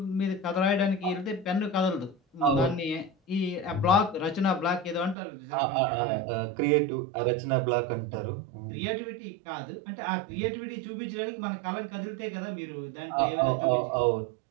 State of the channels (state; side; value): drops out; left; at 5.2 s